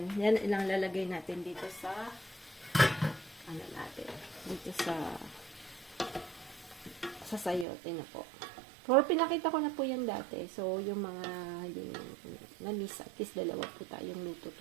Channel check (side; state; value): left; drops out; at 7.7 s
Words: Yan ilang lalagay natin dito sa dito sa sayote na po. Pero pinakita ko na po yan dati. So, yung mga yung na-miss, at least dalawa po tayong luto